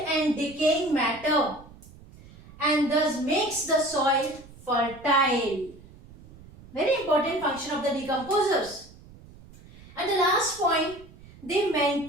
and decaying matter and thus makes the soil fertile. Very important function of the decomposers. And the last point, they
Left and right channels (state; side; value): noise; right; rumble, 21 dB below the sound